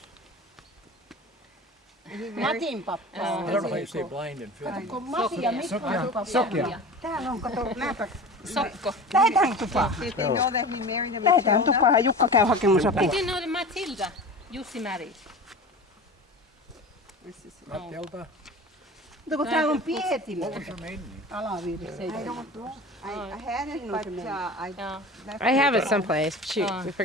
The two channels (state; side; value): normal; both; correlation 0.34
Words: Matin pappa. I don't know how you say blind in Finnish. Kun Mati ja Mikko on pappa. Täällä on, kato, näpä. Sokko. Lähetään tupaan. Lähetään tupaan ja Jukka käy hakemassa apua. Did you know that Matilda, Jussi married? Matilda? Mutta kun täällä on Pietillä What was her maiden name? alavirsi. I had it, but I Yeah. left I have it someplace. Shoot, we